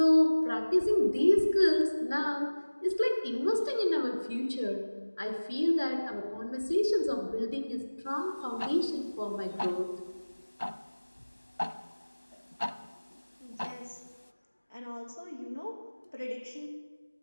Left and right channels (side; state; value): both; inverted; correlation -1.00